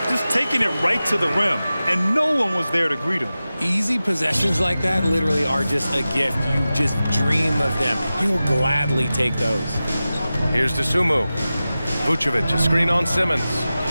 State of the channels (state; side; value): inverted; both; correlation -0.95